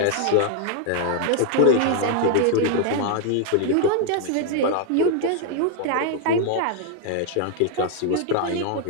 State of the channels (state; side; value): different; both; correlation 0.00